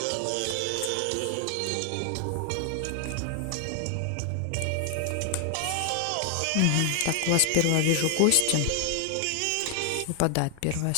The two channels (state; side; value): different; both; correlation 0.00